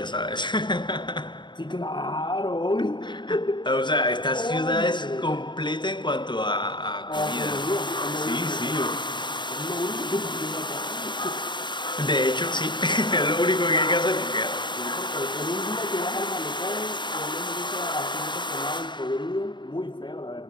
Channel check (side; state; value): right; late; 0.22 ms